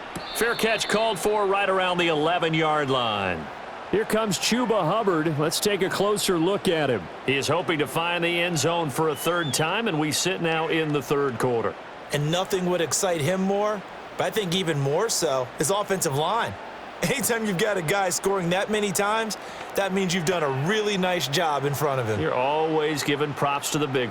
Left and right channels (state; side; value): identical; both; correlation 1.00